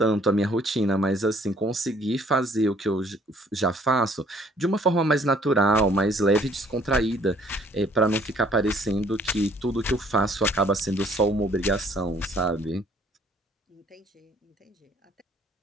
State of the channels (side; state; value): both; normal; correlation 0.60